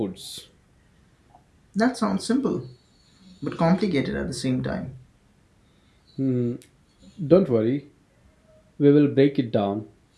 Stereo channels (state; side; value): identical; both; correlation 1.00